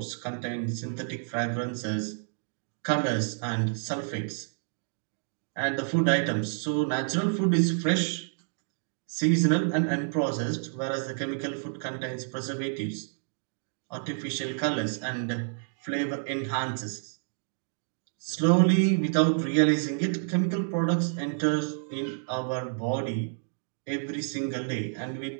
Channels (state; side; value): silent; left; digital silence